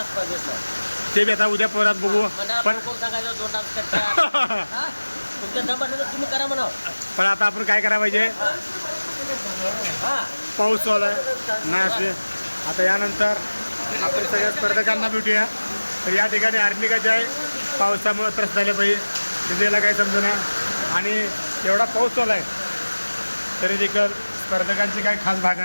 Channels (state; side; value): inverted; both; correlation -1.00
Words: स्पर्धेचं. ते बी आता उद्या परत बघू. पण सांगायचं 2 डान्स करता तुमच्या दमानं तुम्ही करा म्हणा. पण आता आपण काय करायला पाहिजे पाऊस चालू आहे नाही असे. आता यानंतर आपण सगळ्या स्पर्धकांना भेटूया. तर या ठिकाणी आर्निकाचे आहे पावसामुळे त्रस्त झाले पाहिजे तिथेला काही समजेना आणि एवढा पाऊस चालू आहे तरी देखील स्पर्धकांची काही खास